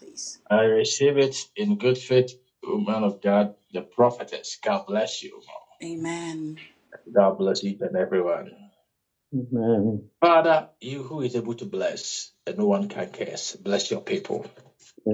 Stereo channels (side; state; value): both; identical; correlation 1.00